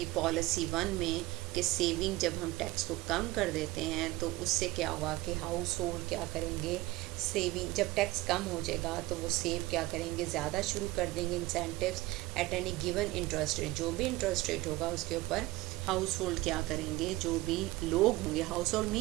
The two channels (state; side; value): quieter; left; 19.4 dB